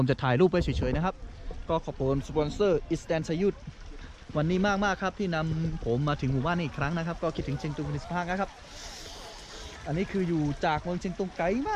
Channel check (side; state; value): both; identical; correlation 1.00